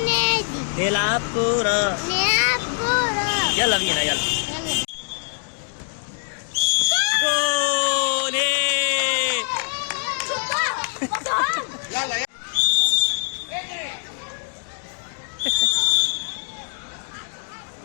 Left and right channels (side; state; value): right; silent; digital silence